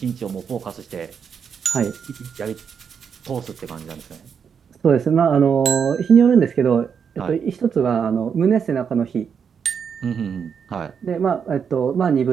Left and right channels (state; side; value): quieter; left; 6.9 dB